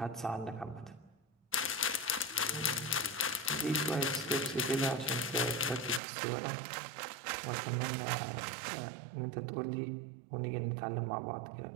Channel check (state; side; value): drops out; left; at 6.0 s